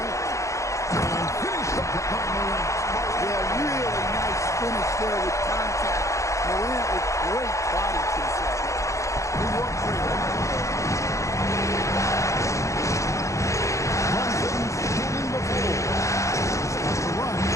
there with contact. Morant with great body control. New York freedom. Brunson's getting the ball. Starts to run.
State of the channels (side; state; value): right; late; 0.15 ms